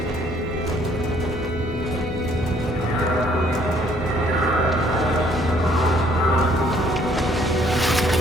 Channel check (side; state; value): both; normal; correlation 0.63